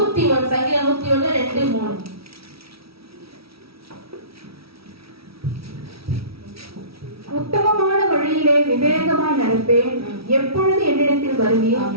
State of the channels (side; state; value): left; late; 0.76 ms